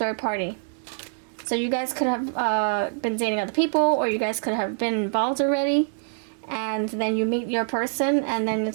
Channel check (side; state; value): left; silent; digital silence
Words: party. So you guys could have been dating other people, or you guys could have been involved already. And then you meet your person, and then